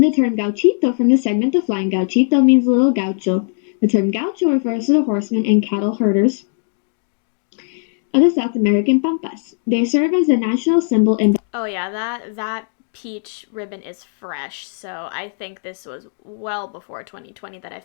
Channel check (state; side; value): silent; right; digital silence